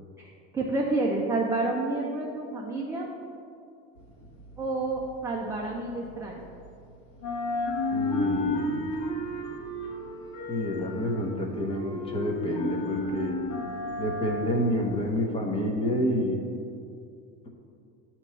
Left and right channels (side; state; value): both; normal; correlation 0.29